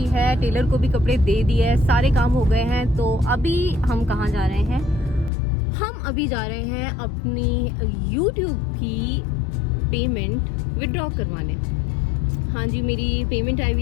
है, टेलर को भी कपड़े दे दिए, सारे काम हो गए हैं। तो अभी हम कहाँ जा रहे हैं? हम अभी जा रहे हैं अपनी YouTube की पेमेंट विड्रॉ करवाने। हाँ जी, मेरी पेमेंट आई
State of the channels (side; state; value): right; drops out; at 5.3 s